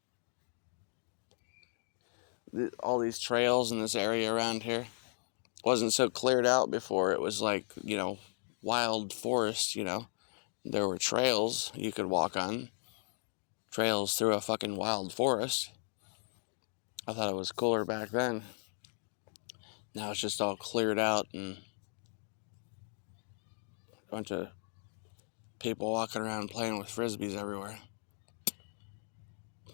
All these trails in this area around here wasn't so cleared out before. It was like, you know, wild forest, you know. There were trails you could walk on. Trails through a fucking wild forest. I thought it was cooler back then. Now it's just all cleared out and a bunch of people walking around playing with frisbees everywhere.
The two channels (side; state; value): right; silent; digital silence